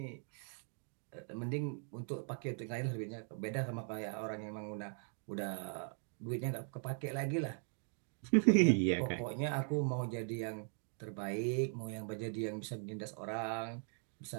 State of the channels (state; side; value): silent; left; 51 dB below the other